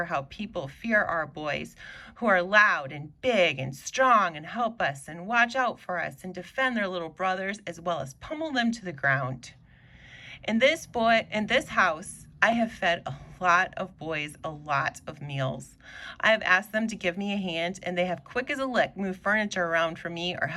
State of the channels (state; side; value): identical; both; correlation 1.00